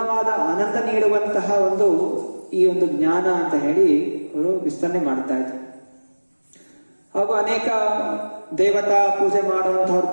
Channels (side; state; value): both; inverted; correlation -1.00